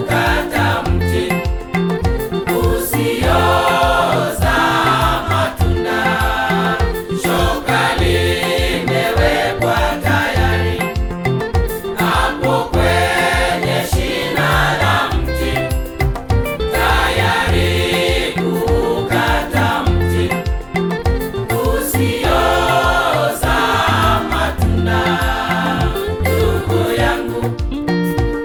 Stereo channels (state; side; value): identical; both; correlation 1.00